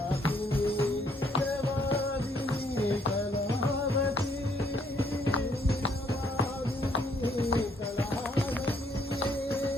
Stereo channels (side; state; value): both; normal; correlation 0.68